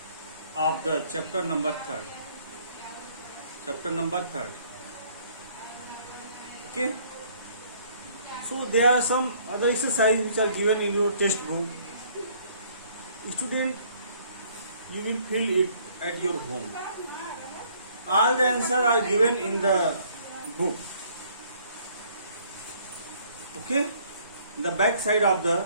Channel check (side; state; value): both; inverted; correlation -0.61